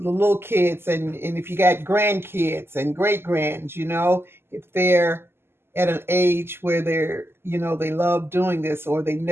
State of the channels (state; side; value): late; left; 0.12 ms